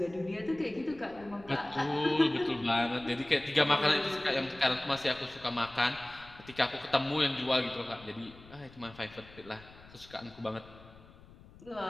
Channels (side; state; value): left; noise; rumble, 21 dB below the sound